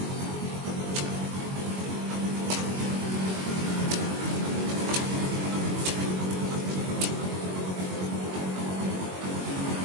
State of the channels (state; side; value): late; left; 21 ms